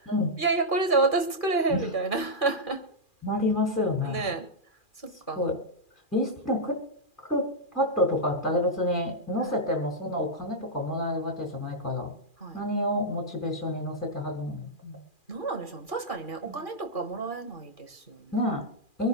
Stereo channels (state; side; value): late; right; 2.4 ms